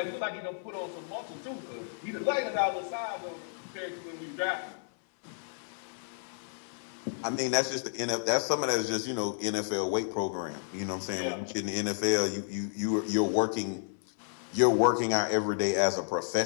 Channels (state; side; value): silent; right; 57 dB below the other